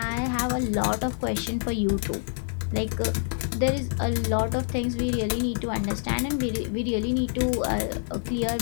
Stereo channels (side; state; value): right; silent; 60 dB below the other